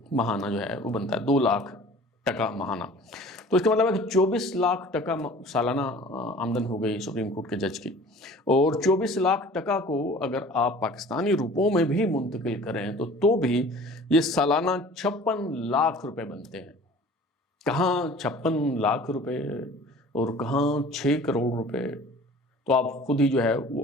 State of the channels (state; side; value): normal; both; correlation 0.46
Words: ماہانہ جو ہے وہ بنتا ہے، 2 لاکھ ٹکا ماہانہ۔ تو اس کا مطلب ہے کہ 24 لاکھ ٹکا سالانہ آمدن ہو گئی سپریم کورٹ کے جج کی، اور 24 لاکھ ٹکا کو اگر آپ پاکستانی روپوں میں بھی منتقل کریں تو بھی یہ سالانہ 56 لاکھ روپے بنتے ہیں۔ کہاں 56 لاکھ روپے اور کہاں 6 کروڑ روپے، تو آپ خود ہی جو ہے